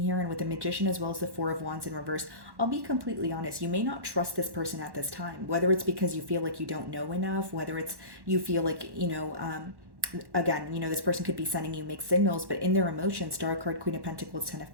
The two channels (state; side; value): late; left; 1.1 ms